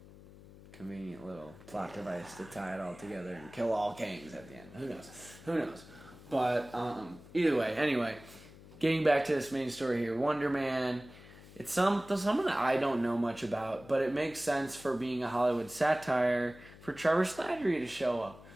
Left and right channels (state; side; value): noise; left; hum, 19 dB below the sound